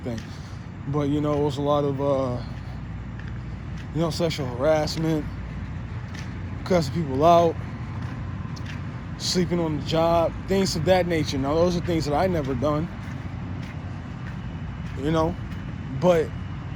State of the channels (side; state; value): both; identical; correlation 1.00